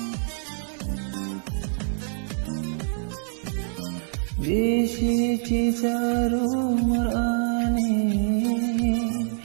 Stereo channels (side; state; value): left; silent; digital silence